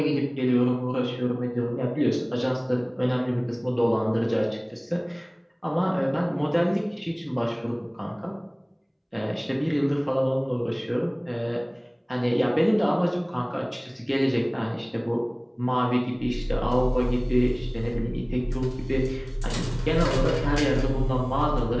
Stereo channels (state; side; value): identical; both; correlation 1.00